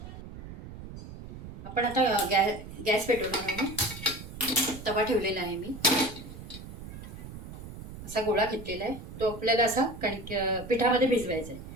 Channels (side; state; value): right; noise; rumble, 12 dB below the sound